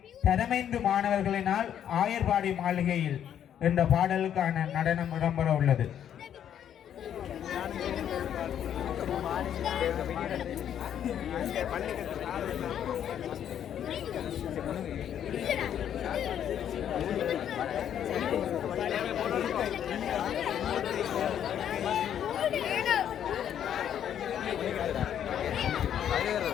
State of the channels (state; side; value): quieter; right; 9.7 dB